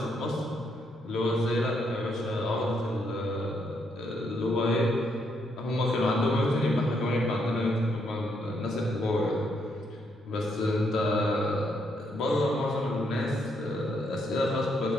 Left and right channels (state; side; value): normal; both; correlation 0.75